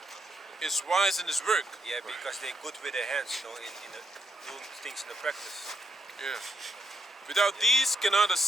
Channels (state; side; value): normal; both; correlation 0.79